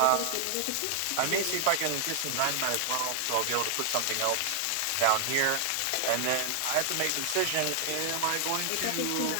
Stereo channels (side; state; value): both; different; correlation 0.00